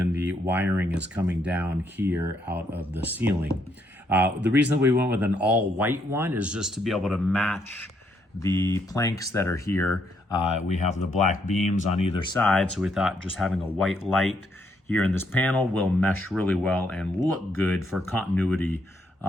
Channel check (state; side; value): normal; both; correlation 0.74